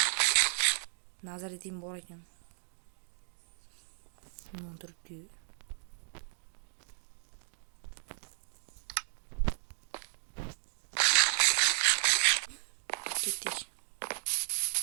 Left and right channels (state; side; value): silent; left; digital silence